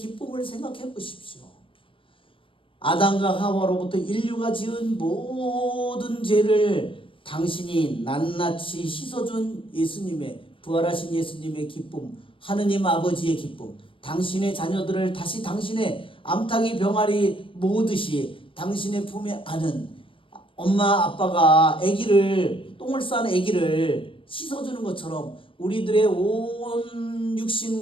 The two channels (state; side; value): late; right; 0.25 ms